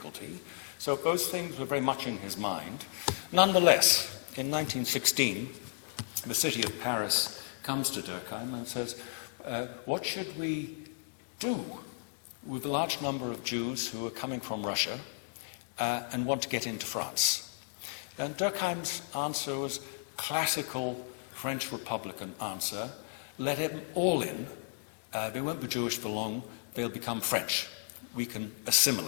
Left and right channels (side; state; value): right; silent; digital silence